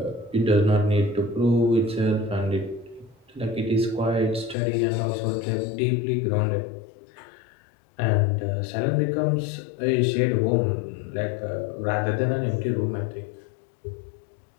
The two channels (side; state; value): right; drops out; at 4.5 s